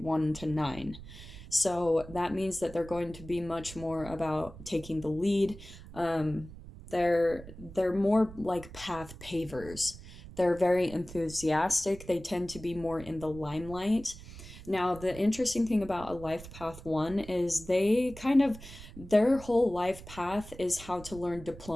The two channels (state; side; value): noise; right; rumble, 15 dB below the sound